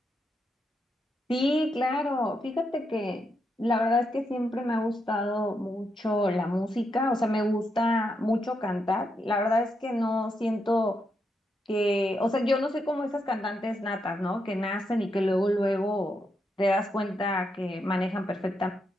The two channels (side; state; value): both; normal; correlation 0.82